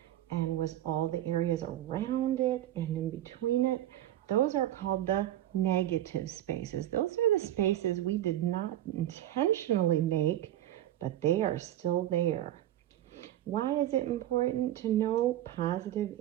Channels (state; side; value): quieter; left; 13.0 dB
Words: and was all the areas around it and in between it, those are called the negative spaces. Those are the spaces we did not intentionally make, but they are still there. Why is it important to know positive